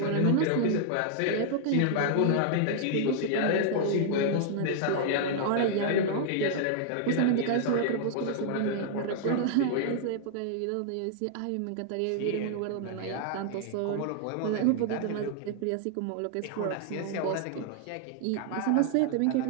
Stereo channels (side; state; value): both; different; correlation -0.01